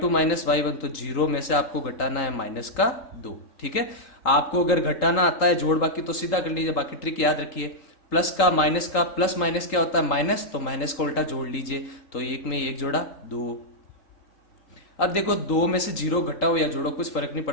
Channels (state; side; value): late; right; 3.8 ms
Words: माइनस y1, तो 0 में से आपको घटाना है -2, ठीक है। आपको अगर घटाना आता है जोड़ बाकी तो सीधा कर लीजिए, बाकी ट्रिक याद रखिए। प्लस का माइनस का, प्लस माइनस क्या होता है, माइनस, तो माइनस को उल्टा जोड़ लीजिए। तो 1 में 1 जोड़ा 2। अब देखो 2 में से 0 घटाओ या जोड़ो कुछ फर्क नहीं